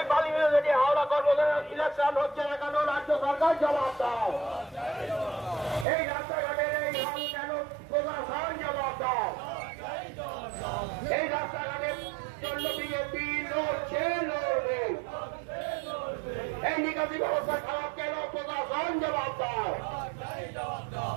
বালি মিউনিসিপালিটি হাওড়া কর্মচারী ইলেকশন হচ্ছে না কেন? রাজ্য সরকার জবাব দাও। এই রাস্তাঘাটের এই হাল কেন? প্রশাসন জবাব দাও। এই রাস্তাঘাটের জন্য বিজেপি লড়ছে লড়বে। এই নিকাশি ব্যবস্থা খারাপ কেন? প্রশাসন জবাব দাও।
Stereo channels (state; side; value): drops out; left; at 5.9 s